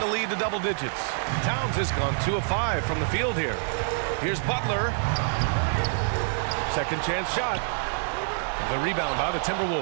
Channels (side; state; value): left; silent; digital silence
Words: lead to double digits. Towns has gone 2 of 5 from the field here. Here's Butler. Second chance shot. The rebound by the